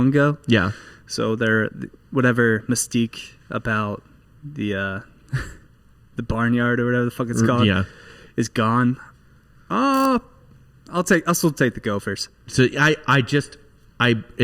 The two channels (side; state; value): both; identical; correlation 1.00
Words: ago. Yeah. So they're whatever mystique about the the barnyard or whatever the fuck it's called Yeah. is gone. I'll still take the Gophers. So